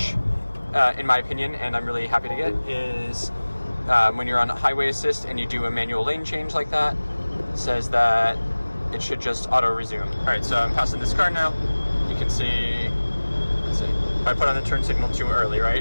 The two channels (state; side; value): inverted; both; correlation -1.00